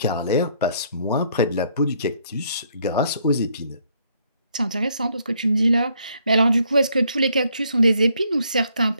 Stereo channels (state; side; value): inverted; both; correlation -0.69